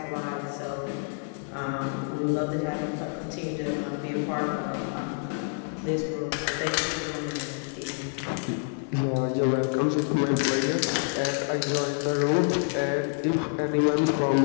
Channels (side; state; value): right; silent; 56 dB below the other